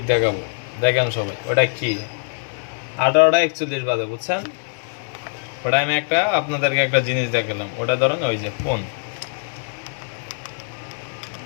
দেখাবো, দেখেন সবাই। ওটা কি? 18:41 বাজে, বুঝছেন? ওটা আমি আপনাদেরকে একটা জিনিস দেখালাম। ওটা ধরেন ওই যে ফোন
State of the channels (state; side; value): silent; right; digital silence